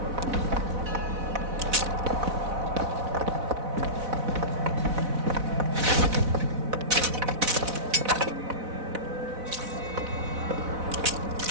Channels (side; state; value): left; late; 4.0 ms